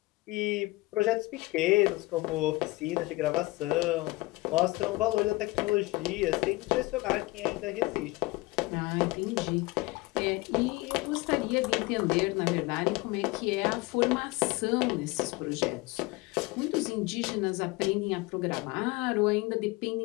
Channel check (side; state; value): right; quieter; 21.9 dB